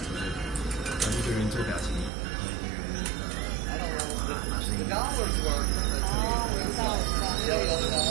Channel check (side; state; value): left; drops out; at 2.1 s